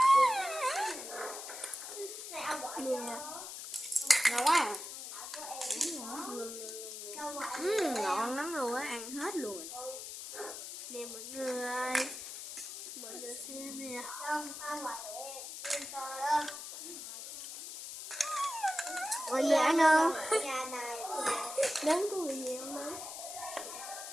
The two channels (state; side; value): noise; left; hiss, 9 dB below the sound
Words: Ngon quá à. Ngon lắm luôn á, ăn hết luôn. Nè mọi người. Mọi người xem nè. Mọi người ăn không? Nấm có bị gì không nấm?